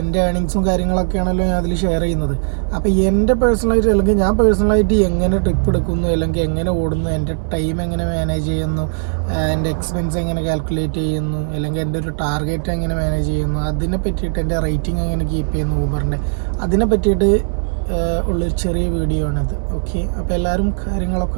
എൻ്റെ ഏണിങ്സും കാര്യങ്ങളൊക്കെയാണല്ലോ ഞാൻ അതിൽ ഷെയർ ചെയ്യുന്നത്. അപ്പോൾ എൻ്റെ പേഴ്സണലായിട്ട്, അല്ലെങ്കിൽ ഞാൻ പേഴ്സണലായിട്ട് എങ്ങനെ ട്രിപ്പ് എടുക്കുന്നു, അല്ലെങ്കിൽ എങ്ങനെ ഓടുന്നു, എൻ്റെ ടൈം എങ്ങനെ മാനേജ് ചെയ്യുന്നു, എൻ്റെ എക്സ്പെൻസ് എങ്ങനെ കാൽക്കുലേറ്റ് ചെയ്യുന്നു, അല്ലെങ്കിൽ എൻ്റെ ഒരു ടാർഗറ്റ് എങ്ങനെ മാനേജ് ചെയ്യുന്നു, അതിനെ പറ്റിയിട്ട് എൻ്റെ റേറ്റിംഗ് എങ്ങനെ കീപ്പ് ചെയ്യുന്നു ഊബറിൻ്റെ, അതിനെ പറ്റിയിട്ട് ഉള്ളൊരു ചെറിയ വീഡിയോ ആണിത്. ഓക്കെ, അപ്പോൾ എല്ലാവരും കാര്യങ്ങളൊക്കെ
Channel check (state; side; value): silent; left; 65 dB below the other